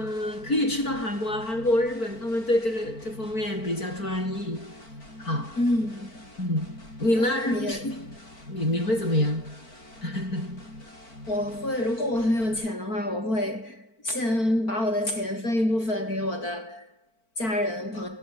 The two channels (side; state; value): right; late; 4.5 ms